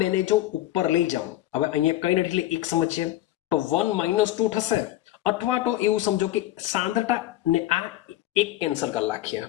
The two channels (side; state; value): right; quieter; 14.7 dB